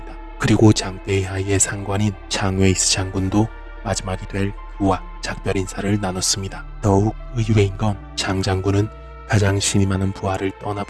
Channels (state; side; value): identical; both; correlation 1.00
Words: 그리고 장베이하이의 상관인 장웨이스 장군도 마지막이 될 그와 작별 인사를 나눴습니다. 더욱 의외인 건 장 장군은 가장 신이 많은 부하를